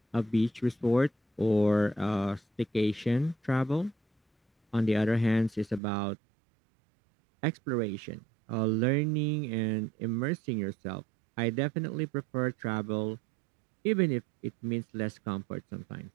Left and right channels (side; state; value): left; drops out; at 5.8 s